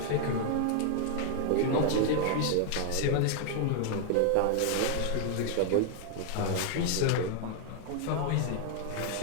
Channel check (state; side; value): different; both; correlation 0.00